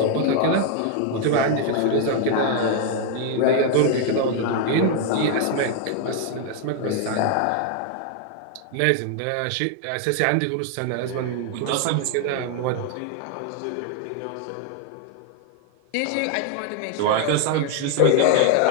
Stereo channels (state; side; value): different; both; correlation 0.00